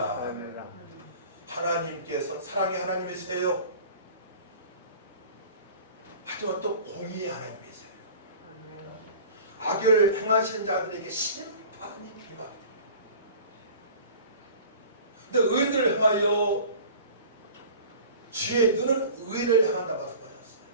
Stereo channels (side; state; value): both; inverted; correlation -0.42